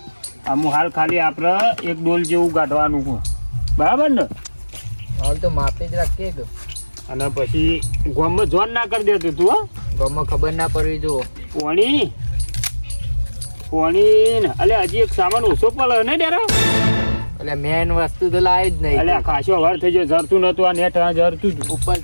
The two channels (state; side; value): inverted; both; correlation -1.00